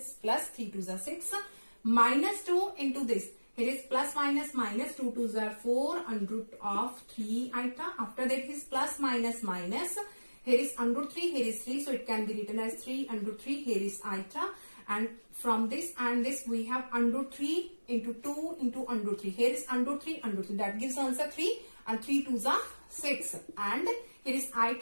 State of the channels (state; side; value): inverted; both; correlation -1.00